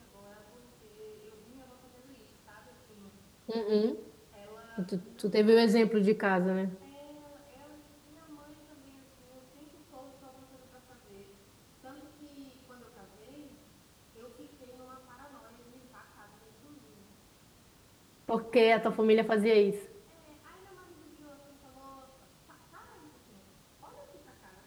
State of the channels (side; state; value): both; identical; correlation 1.00